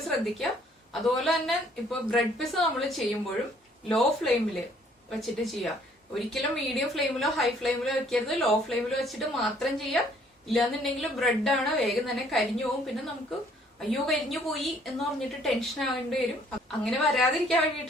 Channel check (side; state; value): both; normal; correlation 0.62